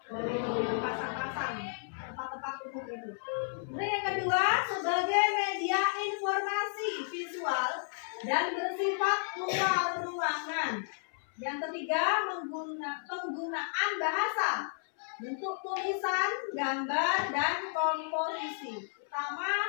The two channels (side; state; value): right; silent; 56 dB below the other